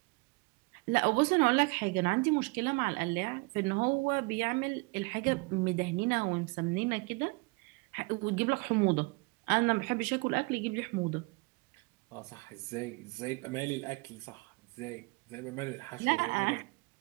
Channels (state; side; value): quieter; left; 28.1 dB